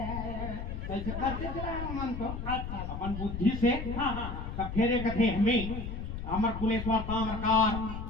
कैसे करते चला मन तो अच्छा अपन बुद्धि से हाँ हाँ तब फेरे कथे हमें अमर कुलेश्वर ताम्रकार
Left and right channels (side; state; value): left; noise; rumble, 6 dB below the sound